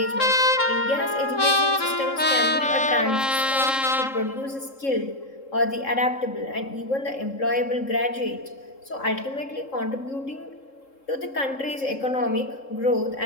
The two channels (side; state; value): right; late; 3.7 ms